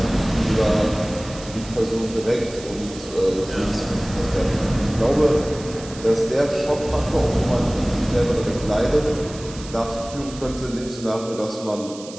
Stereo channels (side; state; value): right; noise; hiss, 16 dB below the sound